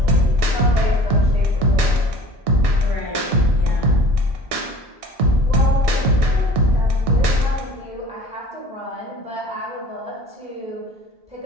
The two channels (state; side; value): normal; both; correlation 0.45